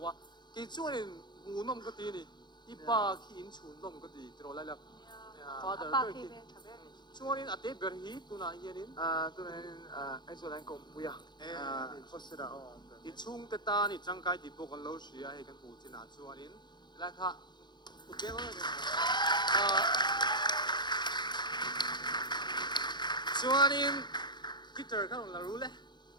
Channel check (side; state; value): right; late; 0.21 ms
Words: cái chỗ này ngu nom cái tí này ipa khi in chun nom cái tí rồi lại là father Pa cái ki tí ve thabe. chỗ này ate ber hi tu na hiền in Tuh ay so lang kung puya. Hosira. i chung te ta ni chang kai ti po kan lo shia he kan pu chin a chuan in la kha okay ma chuan in guitar kan la ru le